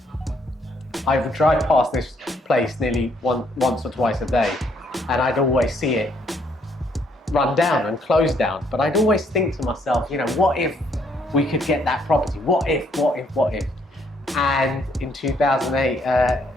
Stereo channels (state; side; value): normal; both; correlation 0.69